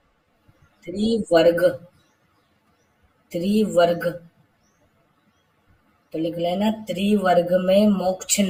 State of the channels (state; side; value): identical; both; correlation 1.00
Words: त्रिवर्ग, त्रिवर्ग। तो लिख लेना त्रिवर्ग में मोक्ष